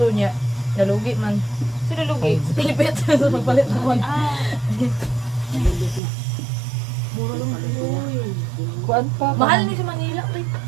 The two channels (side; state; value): left; drops out; at 6.0 s